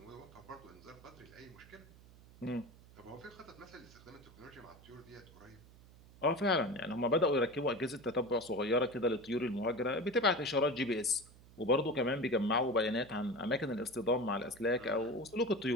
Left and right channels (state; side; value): noise; right; hum, 22 dB below the sound